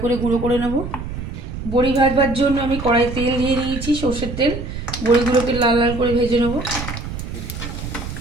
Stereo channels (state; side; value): noise; right; rumble, 7 dB below the sound